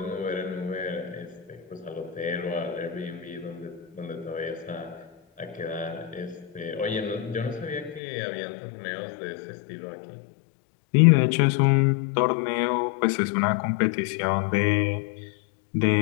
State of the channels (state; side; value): drops out; right; at 8.0 s